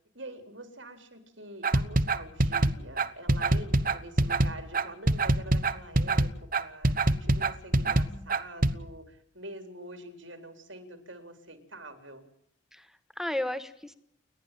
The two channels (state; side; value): normal; both; correlation 0.66